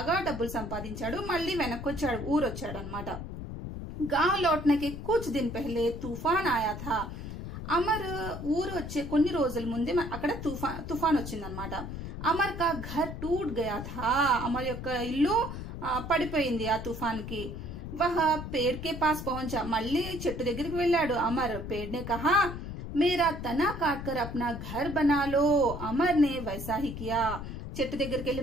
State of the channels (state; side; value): noise; left; rumble, 8 dB below the sound